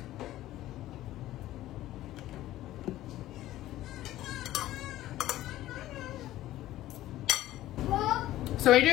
So when you're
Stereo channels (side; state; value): right; quieter; 14.8 dB